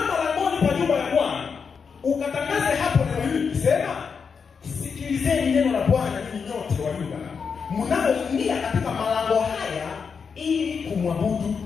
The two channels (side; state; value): right; quieter; 5.9 dB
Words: langoni pa nyumba ya Bwana ukatangaze hapo neno hili kusema, sikilizeni neno la Bwana ninyi nyote wa Yuda mnaoingia katika malango haya ili kumwabudu